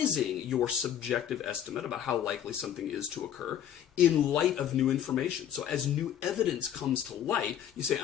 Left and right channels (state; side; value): quieter; right; 9.9 dB